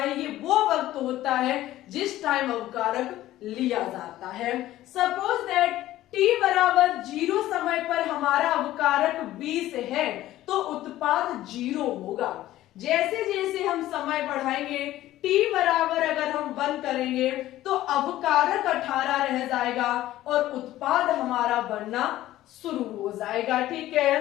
ये वो वक्त होता है जिस टाइम अवकारक लिया जाता है। सपोज दैट t बराबर 0 समय पर हमारा अवकारक 20 है तो उत्पाद 0 होगा। जैसे जैसे हम समय बढ़ाएंगे t बराबर अगर हम 1 करेंगे तो अवकारक 18 रह जाएगा और उत्पाद हमारा बनना शुरू हो जाएगा। ठीक है,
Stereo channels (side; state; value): right; quieter; 14.7 dB